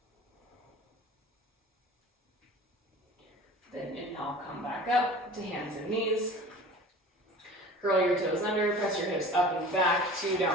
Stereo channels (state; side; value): normal; both; correlation 0.41